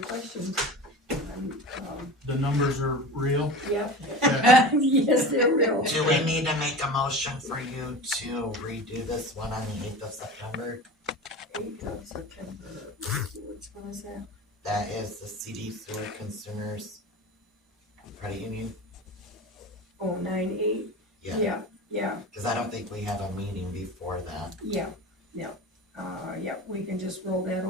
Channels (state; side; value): normal; both; correlation 0.32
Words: The numbers are real. Yep. Okay. Yes, they're real. Do we need to make a motion for you to redo this one on the 8th of September? 8th of September, which one is that? That is the CD Sewer Consumers Credit Union? Oh, 9/8? Yeah. Yeah, Cause I don't think we have a meeting before that. yeah. Yeah, we can just roll that